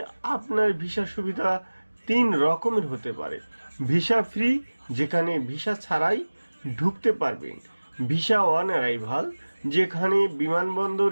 আপনার ভিসা সুবিধা 3 রকমের হতে পারে। ভিসা ফ্রি, যেখানে ভিসা ছাড়াই ঢুকতে পারবেন। ভিসা অন অ্যারাইভাল, যেখানে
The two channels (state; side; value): inverted; both; correlation -1.00